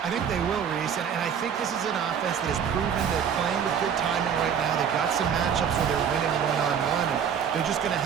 I think they will, Reese, and I think this is an offense that has proven they're playing with good timing right now. They've got some matchups where they're winning one-on-one. They're just going to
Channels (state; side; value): quieter; left; 7.8 dB